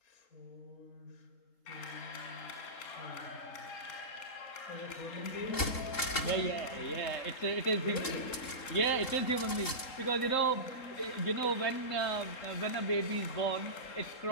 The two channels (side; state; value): right; late; 3.7 ms